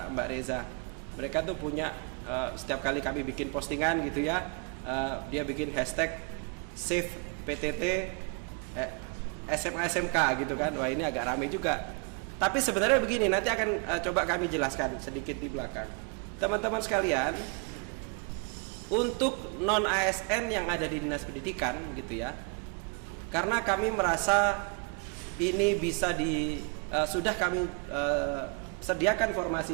Reza. Mereka tuh punya setiap kali kami bikin postingan gitu ya, dia bikin hashtag save PTT SMA SMK gitu kan. Wah ini agak rame juga. Tapi sebenarnya begini, nanti akan coba kami jelaskan sedikit di belakang. Teman-teman sekalian, untuk non ASN yang ada di Dinas Pendidikan gitu ya. Karena kami merasa ini bisa sudah kami sediakan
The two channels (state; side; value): quieter; left; 36.5 dB